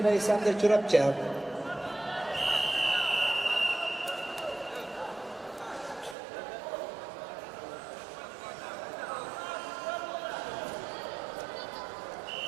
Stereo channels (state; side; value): drops out; left; at 6.2 s